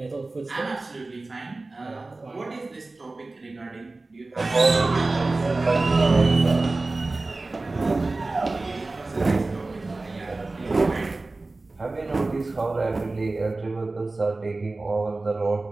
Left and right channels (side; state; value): left; quieter; 3.3 dB